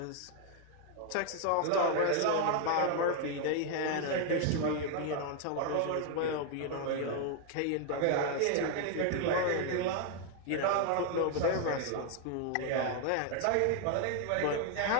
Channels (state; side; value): different; both; correlation 0.00